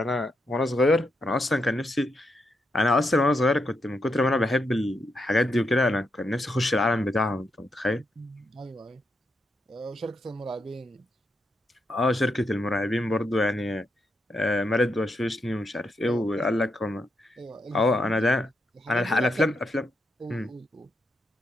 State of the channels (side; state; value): both; normal; correlation 0.82